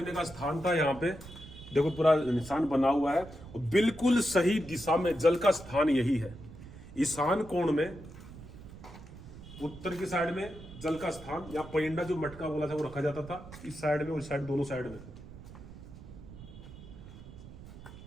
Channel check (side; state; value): right; noise; rumble, 15 dB below the sound